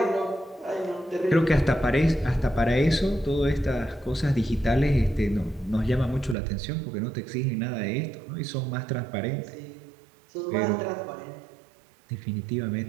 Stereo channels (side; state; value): left; drops out; at 6.4 s